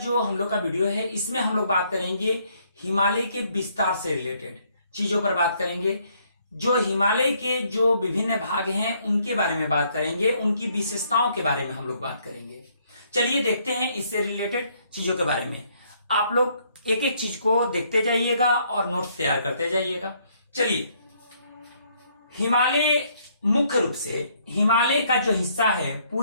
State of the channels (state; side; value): inverted; both; correlation -0.68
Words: हम लोग का वीडियो है, इसमें हम लोग बात करेंगे हिमालय के विस्तार से रिलेटेड चीजों पर बात करेंगे। जो हिमालय के जो विभिन्न भाग हैं उनके बारे में बात करेंगे, उनकी विशेषताओं के बारे में हम लोग बात करेंगे। चलिए देखते हैं इससे रिलेटेड चीजों के बारे में। आप लोग एक एक चीज को देखते जाइएगा और नोट्स तैयार करते जाइएगा। चलिए, हिमालय मुख्य रूप से हिमालय का जो हिस्सा है,